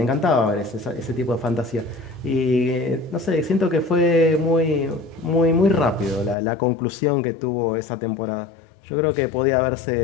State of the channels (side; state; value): right; drops out; at 6.4 s